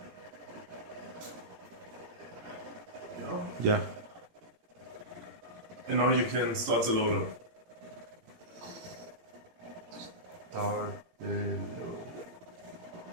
Ya. And now you can start the loader. Start the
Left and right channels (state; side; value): late; left; 17 ms